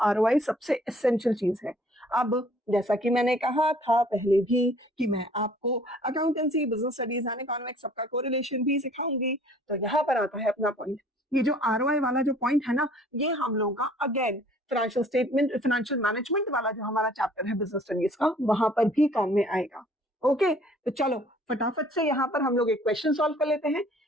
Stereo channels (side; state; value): both; normal; correlation 0.55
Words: सबसे एसेंशियल चीज है। अब जैसा कि मैंने कहा था पहले भी कि मैं आपको accountancy, business studies and economics सबका कोरिलेशन भी सिखाऊंगी, तो यहाँ पर आता है अपना पॉइंट। ये जो आरओआई वाला जो पॉइंट है ना, ये हम लोगों का again financial statement, financial management वाला जो हमारा चैप्टर है बिजनेस स्टडीज का, वहां पर भी काम में आएगा। ओके, तो चलो फटाफट से यहाँ पर हम लोग एक क्वेश्चन सॉल्व कर लेते हैं।